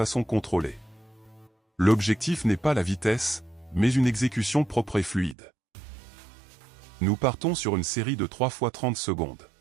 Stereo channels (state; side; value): drops out; left; at 5.4 s